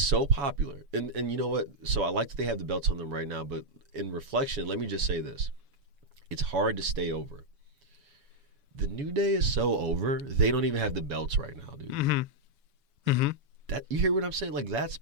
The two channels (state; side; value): late; left; 7.1 ms